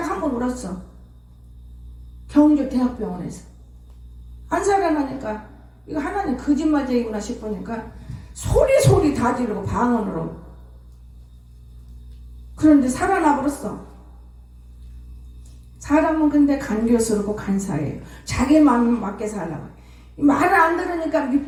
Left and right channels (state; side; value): identical; both; correlation 1.00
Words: 한 번 울었어. 경주 대학병원에서. 안 살아나니까 이거 하나님 거짓말쟁이구나 싶으니까 소리 다 지르고 방언으로. 그런데 살아나 버렸어. 사람은 근데 간교스럽고 간사해요. 자기 마음 맞게 살라고. 말을 안 들으니까